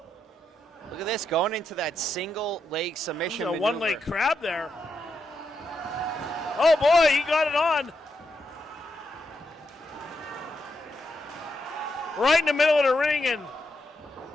Look at this, going into that single leg submission maneuver. A one-leg crab there. Oh boy, he got it on. right in the middle of the ring, and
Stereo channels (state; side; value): normal; both; correlation 0.82